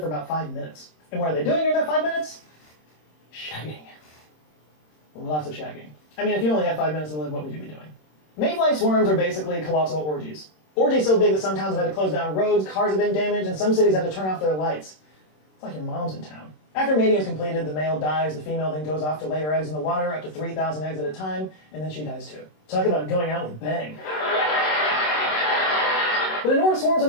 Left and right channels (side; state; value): right; late; 26 ms